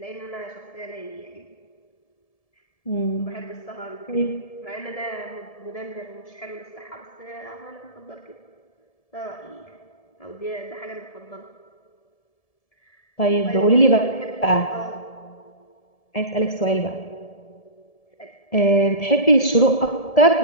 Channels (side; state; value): right; late; 1.7 ms